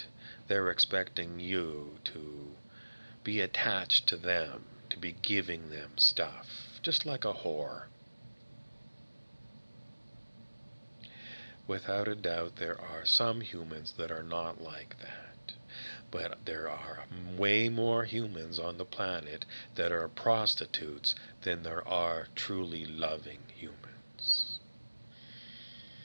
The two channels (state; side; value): inverted; both; correlation -1.00